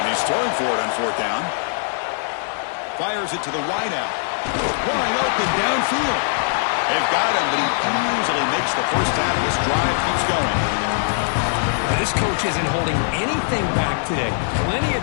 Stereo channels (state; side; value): silent; right; digital silence